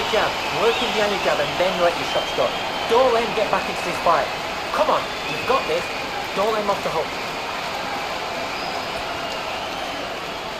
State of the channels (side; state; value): both; identical; correlation 1.00